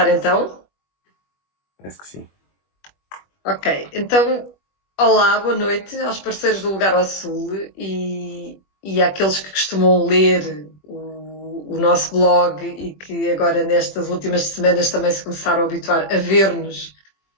então? Parece que sim. Ok, então, olá, boa noite aos parceiros do Lugar ao Sul e àqueles que costumam ler o nosso blog e que agora nestas últimas semanas também se começaram a habituar a ver-nos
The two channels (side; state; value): right; late; 21 ms